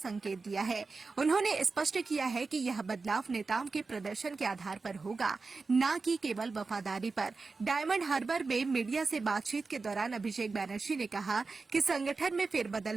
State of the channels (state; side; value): quieter; left; 4.2 dB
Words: दिया है। उन्होंने स्पष्ट किया है कि यह बदलाव नेताओं के प्रदर्शन के आधार पर होगा, न कि केवल वफादारी पर। डायमंड हार्बर में मीडिया से बातचीत के दौरान अभिषेक बैनर्जी ने कहा कि संगठन में